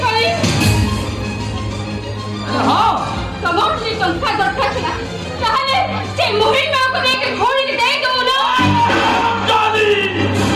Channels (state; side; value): identical; both; correlation 1.00